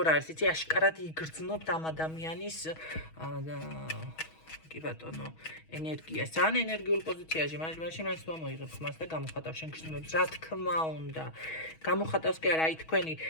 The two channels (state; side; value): late; right; 6.3 ms